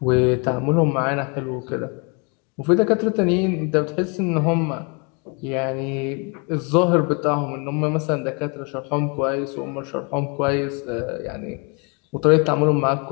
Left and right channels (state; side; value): quieter; right; 33.3 dB